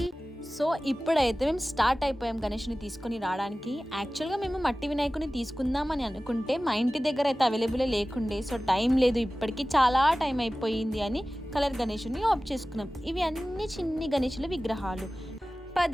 సో ఇప్పుడైతే మేము స్టార్ట్ అయిపోయాం గణేష్ని తీసుకొని రావడానికి. యాక్చువల్గా మేము మట్టి వినాయకుని తీసుకుందామని అనుకుంటే మా ఇంటి దగ్గర అయితే అవైలబుల్ లేకుండే. సో టైం లేదు, ఇప్పటికీ చాలా టైం అయిపోయింది అని కలర్ గణేషుని ఆఫ్ చేసుకున్నాం. ఇవి అన్ని చిన్ని గణేషుల విగ్రహాలు.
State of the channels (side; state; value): both; normal; correlation 0.96